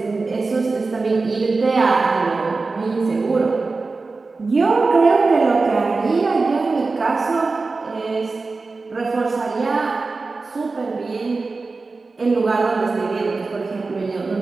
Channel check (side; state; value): left; quieter; 3.9 dB